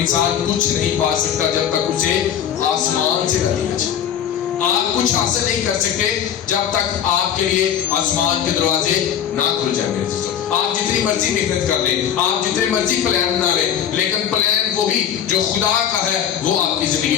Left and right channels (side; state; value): right; quieter; 9.3 dB